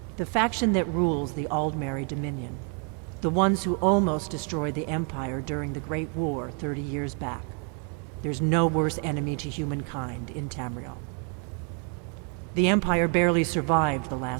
The faction that rules the Aldmeri Dominion, the ones who almost destroyed the Empire during the Great War 30 years back. There's no worse enemy to humankind in Tamriel. The Empire barely survived the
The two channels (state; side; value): quieter; left; 39.4 dB